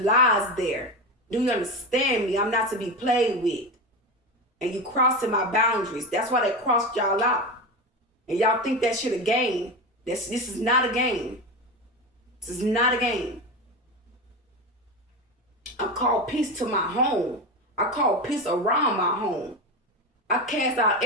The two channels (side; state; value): both; normal; correlation 0.20